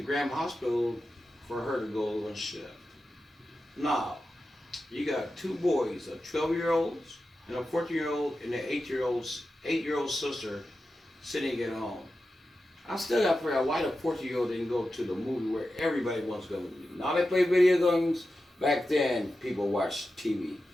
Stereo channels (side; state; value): both; normal; correlation 0.91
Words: Graham Hospital for her to go on shift. Now, you got two boys, a 12-year-old and a 14-year-old and an 8-year-old sister sitting at home. I still got to figure out why the 14-year-old didn't go to the movie where everybody wants to go to the movie. Now they play video games. Back then, people watched TV.